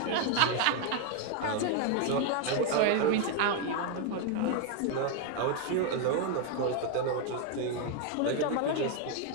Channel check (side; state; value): both; different; correlation 0.01